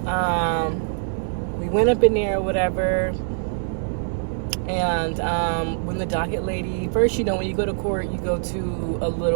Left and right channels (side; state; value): left; silent; digital silence